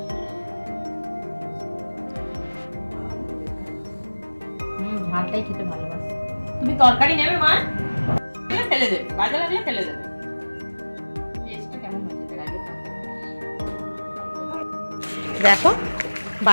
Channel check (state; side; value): inverted; both; correlation -1.00